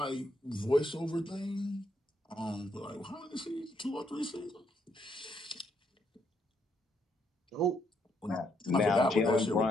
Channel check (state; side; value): normal; both; correlation 0.74